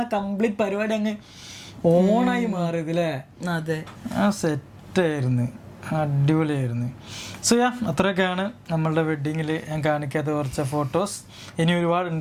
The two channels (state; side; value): identical; both; correlation 1.00